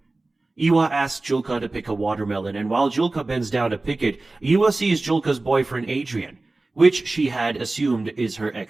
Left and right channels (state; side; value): quieter; left; 3.1 dB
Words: Iwa asks Julka to pick a watermelon, and while Julka bends down to pick it, Iwa sees Julka's boyfriend Adrian, which she had assumed is her